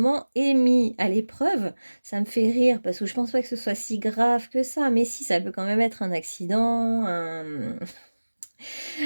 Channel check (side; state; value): both; inverted; correlation -1.00